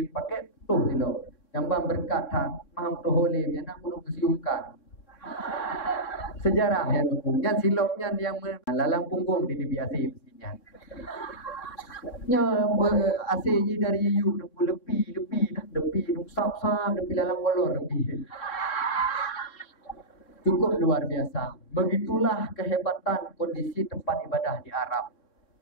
pakai putus silap. Yang bang berkat tak maham tu holim yang nak perlu kesiumkan. Sejarah yang hukum. Yang silapnya yang lalang punggung di biasa mestinya. Nya ACJ dari you lebih sap-sap lebih lalang kolor lebih. Cukup luar biasa. Begitulah kehebatan kondisi tempat ibadah di Arab.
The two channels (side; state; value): right; late; 3.7 ms